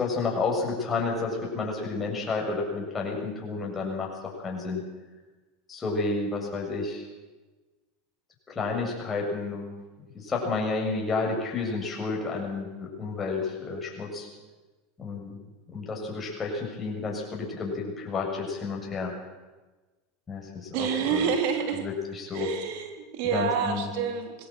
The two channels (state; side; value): normal; both; correlation 0.26